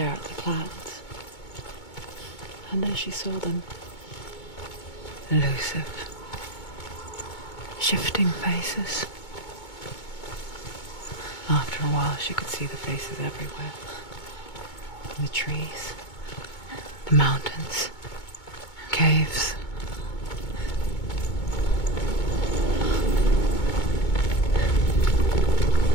at the clouds. And as she saw them, elusive, shifting faces. After a while, she could see the faces everywhere. In the trees, the mountains, caves.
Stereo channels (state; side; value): late; right; 2.2 ms